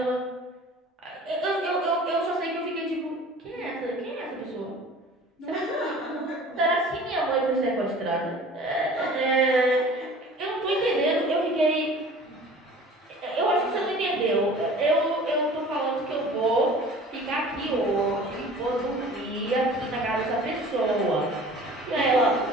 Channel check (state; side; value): normal; both; correlation 0.44